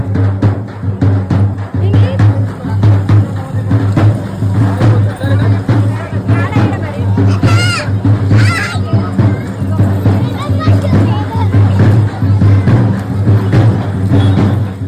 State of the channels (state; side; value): identical; both; correlation 1.00